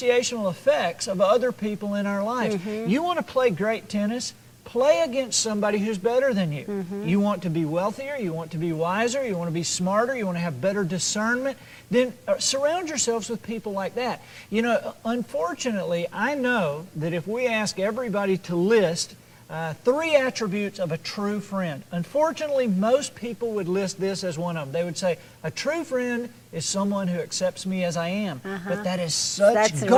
effects of other people in our lives. You want to play great tennis? Play against somebody who's better than you. You want to be wealthier, you want to be wiser, you want to be smarter, you want to have better discernment, then surround yourselves with people like that. You know, unfortunately, I know that if we ask everybody to list 3 attributes of a true friend, unfortunately, most people would list this as one of them. They would say, a true friend is someone who accepts me as I am. But that is such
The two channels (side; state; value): both; identical; correlation 1.00